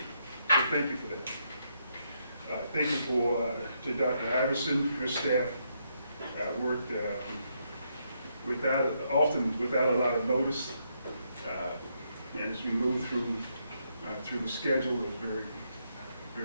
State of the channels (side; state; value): both; inverted; correlation -0.77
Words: So thank you for that. Thank you to Dr. Iverson. Her staff worked often without a lot of notice. And as we moved through the schedule, it was